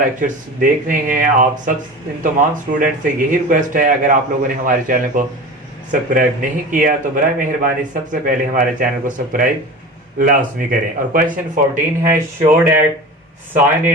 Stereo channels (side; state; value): both; normal; correlation 0.33